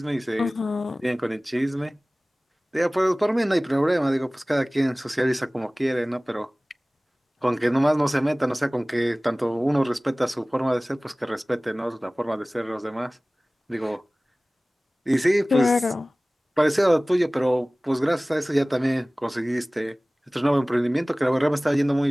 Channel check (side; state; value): both; normal; correlation 0.98